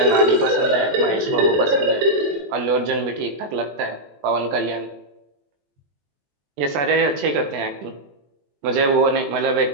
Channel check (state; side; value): late; left; 21 ms